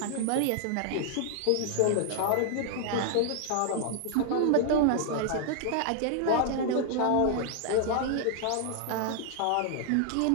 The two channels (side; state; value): both; different; correlation 0.00